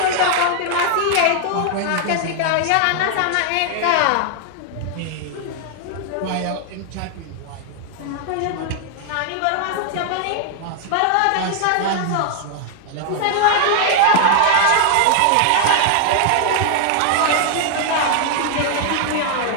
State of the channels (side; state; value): both; different; correlation 0.00